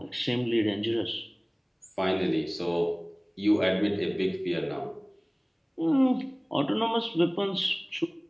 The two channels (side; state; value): both; identical; correlation 1.00